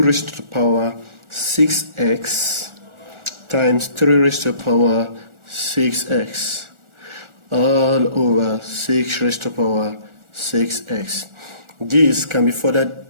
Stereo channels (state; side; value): late; left; 1.4 ms